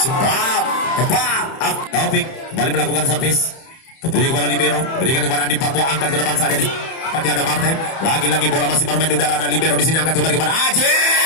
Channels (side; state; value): right; late; 31 ms